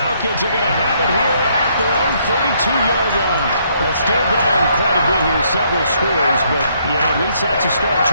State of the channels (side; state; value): both; inverted; correlation -0.70